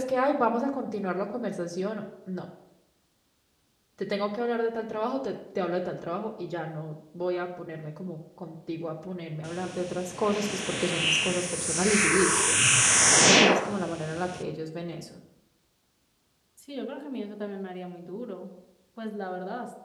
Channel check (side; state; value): both; identical; correlation 1.00